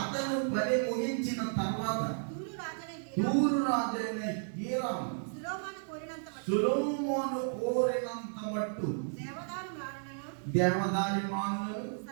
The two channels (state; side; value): silent; left; digital silence